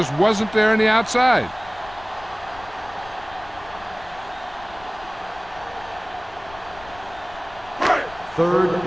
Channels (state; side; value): noise; left; rumble, 21 dB below the sound